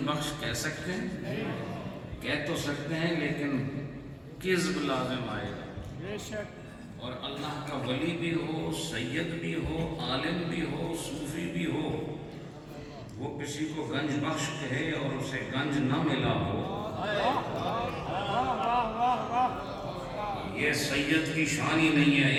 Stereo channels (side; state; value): both; identical; correlation 1.00